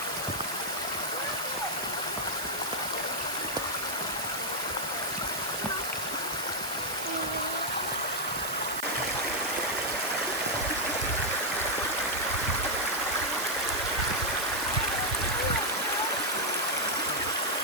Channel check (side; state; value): right; noise; hiss, 8 dB below the sound